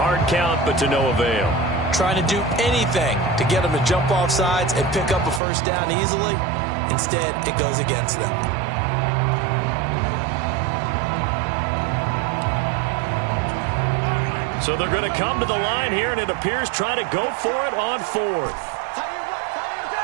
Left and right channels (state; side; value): drops out; left; at 5.4 s